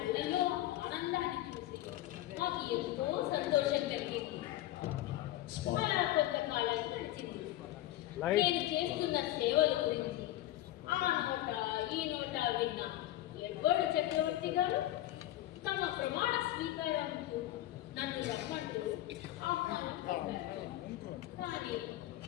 ఆనందాన్ని చూసి మాకు ఎంతో సంతోషం కలిగింది. అలా కొంతకాలం గడిచింది. నేను చేస్తున్న సేవల గురించి ఆ నోట ఈ నోట విన్న ఎడ్వర్డ్ చక్రవర్తి గారు తమ ప్రమాణ స్వీకారంతో నన్ను రమ్మంటూ ఆహ్వానం పంపారు. కానీ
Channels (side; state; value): right; quieter; 15.0 dB